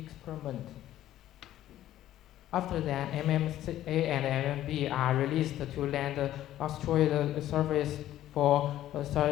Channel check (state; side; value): quieter; right; 13.1 dB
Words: After that, MMA and MMB are released to land asteroid surface for